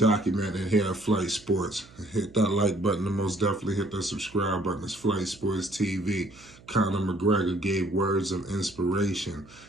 here at Flight Sports. Hit that like button and most definitely hit that subscribe button. It's Flight Sports TV. Conor McGregor gave words of inspiration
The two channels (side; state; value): right; noise; hum, 24 dB below the sound